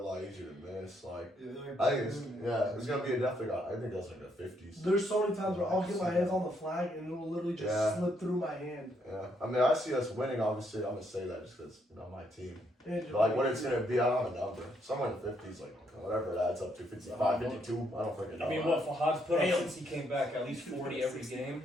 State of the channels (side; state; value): both; normal; correlation 0.73